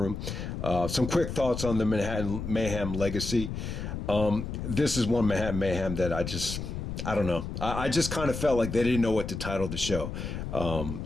Some quick thoughts on the Manhattan Mayhem legacy. This is one Manhattan Mayhem that I don't know. I just kind of felt like they didn't know what to title the show.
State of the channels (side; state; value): left; noise; rumble, 5 dB below the sound